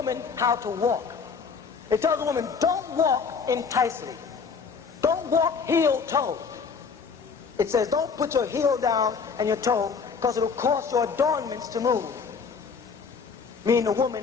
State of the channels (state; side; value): quieter; right; 5.6 dB